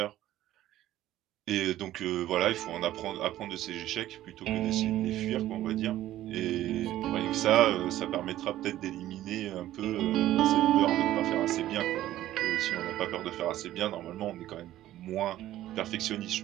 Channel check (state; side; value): quieter; left; 13.9 dB